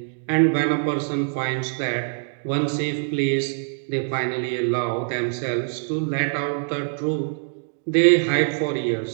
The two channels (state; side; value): silent; left; 63 dB below the other